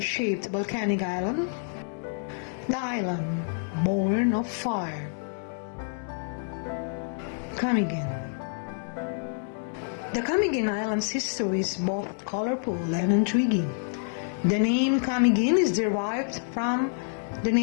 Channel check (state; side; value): silent; right; digital silence